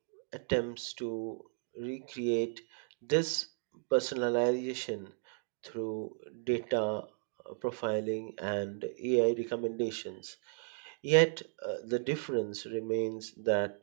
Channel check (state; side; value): silent; left; 55 dB below the other